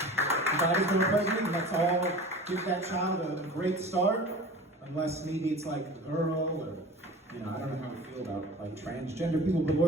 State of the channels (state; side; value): normal; both; correlation 0.39